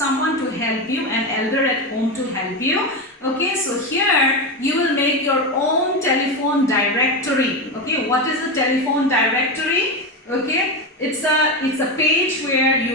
to help you, an elder at home to help you. Okay, so here you will make your own telephone directory. Okay, what is a telephone directory? Okay, it's a page where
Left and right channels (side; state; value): both; normal; correlation 0.15